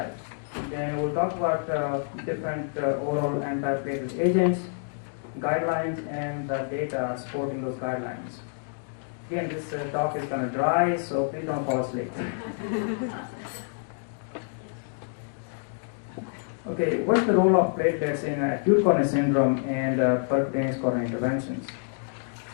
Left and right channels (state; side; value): silent; right; digital silence